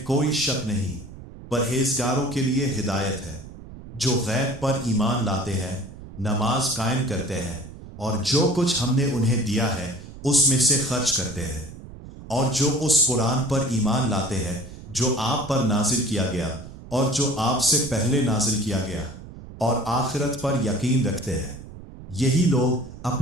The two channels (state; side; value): noise; right; rumble, 15 dB below the sound